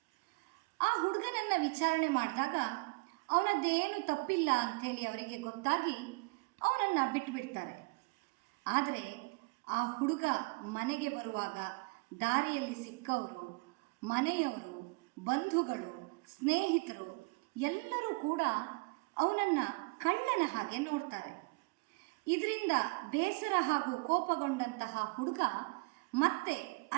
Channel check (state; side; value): quieter; left; 29.0 dB